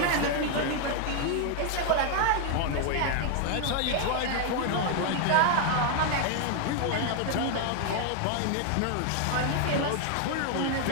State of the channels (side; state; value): both; different; correlation 0.00